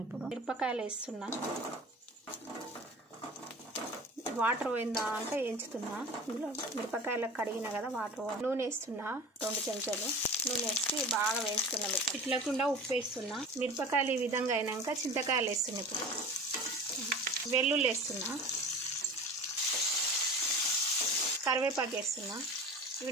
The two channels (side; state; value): both; normal; correlation 0.37